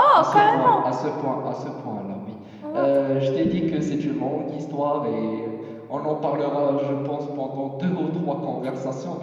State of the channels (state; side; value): identical; both; correlation 1.00